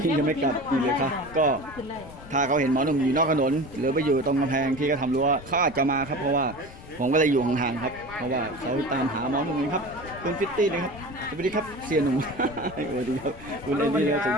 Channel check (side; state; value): left; noise; rumble, 17 dB below the sound